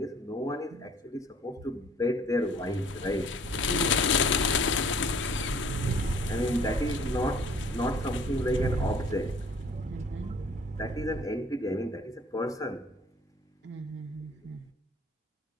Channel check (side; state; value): both; normal; correlation 0.53